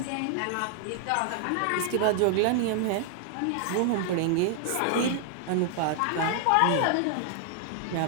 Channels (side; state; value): both; different; correlation 0.00